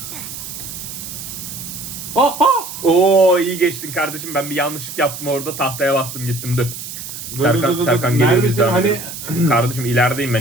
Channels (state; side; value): noise; right; hiss, 10 dB below the sound